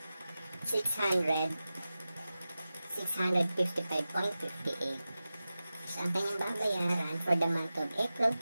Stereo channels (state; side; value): inverted; both; correlation -0.95